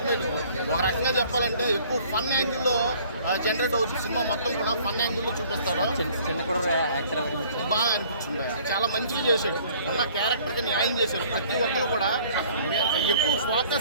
ఒక రకంగా చెప్పాలంటే ఎక్కువ ఫన్ యాంగిల్లో జనరేట్ అవుతుంది. సినిమా మొత్తం కూడా ఫన్ యాంగిల్లో చూపిస్తారు. బాగా అనిపించింది, చాలా మంచిగా చేశాడు. ఉన్న క్యారెక్టర్కి న్యాయం చేశాడు. ప్రతి ఒక్కరు కూడా ఎక్కువ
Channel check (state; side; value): inverted; both; correlation -0.55